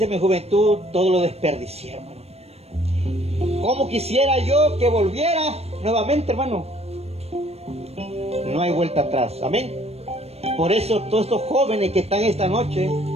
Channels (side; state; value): left; late; 0.30 ms